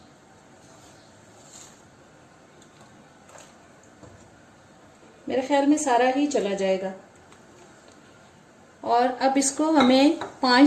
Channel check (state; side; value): identical; both; correlation 1.00